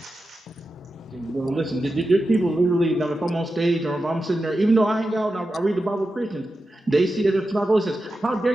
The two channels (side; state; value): both; normal; correlation 0.91